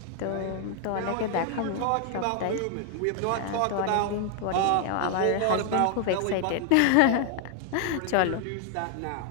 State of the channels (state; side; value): different; both; correlation 0.00